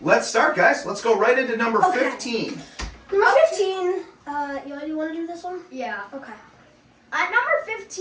let's start, guys. Let's go right into number 15. Number 15. Eli, do you want to do this one? Yeah. Okay. At number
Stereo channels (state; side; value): identical; both; correlation 1.00